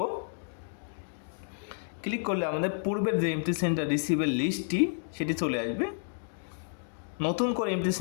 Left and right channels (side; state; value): right; silent; digital silence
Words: ক্লিক করলে আমাদের পূর্বের যে এমটি সিলিন্ডার রিসিভের লিস্টটি সেটি চলে আসবে। নতুন করে এমটি